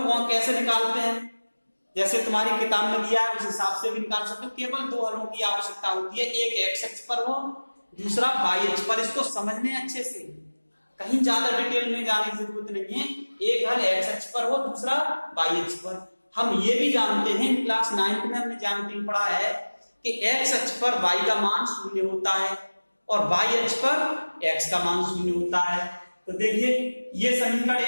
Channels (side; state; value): both; inverted; correlation -1.00